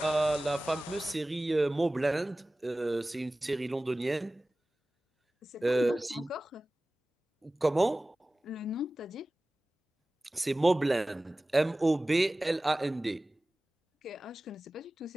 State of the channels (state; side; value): normal; both; correlation 0.97